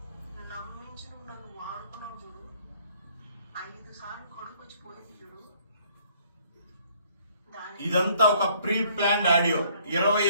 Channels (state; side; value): inverted; both; correlation -0.62